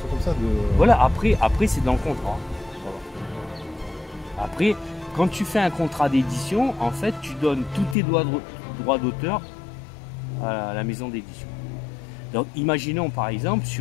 tout comme ça Voilà, après c'est dans le contrat. Voilà. Après, quand tu fais un contrat d'édition, en fait, tu donnes tous tes droits d'auteur à la maison d'édition. Donc, imaginons par exemple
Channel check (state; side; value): drops out; right; at 8.0 s